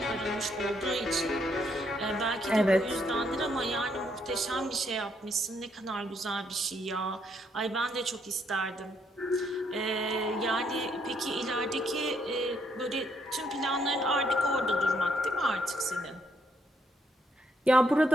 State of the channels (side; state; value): both; normal; correlation 0.73